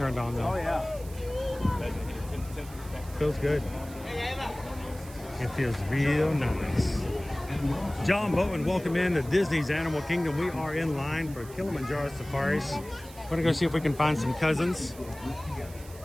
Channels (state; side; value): noise; right; hiss, 19 dB below the sound